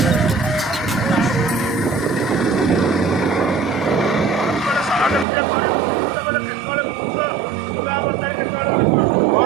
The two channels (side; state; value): left; drops out; at 5.2 s